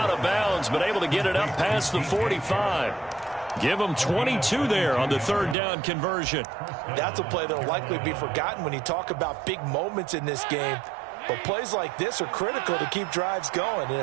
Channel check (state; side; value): drops out; left; at 5.6 s